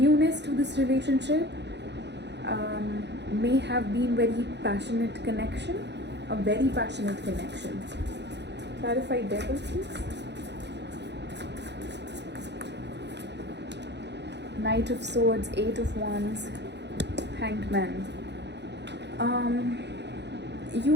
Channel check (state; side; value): late; left; 0.50 ms